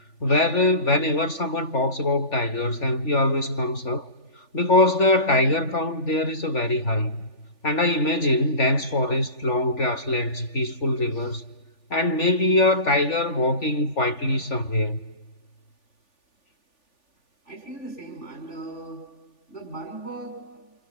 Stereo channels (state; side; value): late; right; 3.4 ms